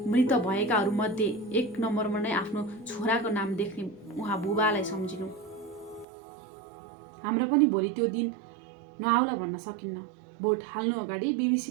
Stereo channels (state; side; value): drops out; left; at 6.1 s